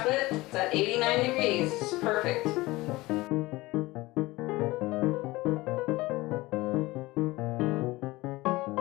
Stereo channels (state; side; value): quieter; right; 20.3 dB